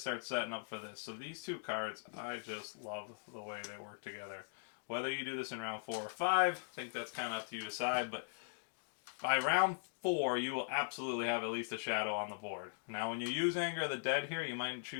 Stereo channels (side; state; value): right; silent; digital silence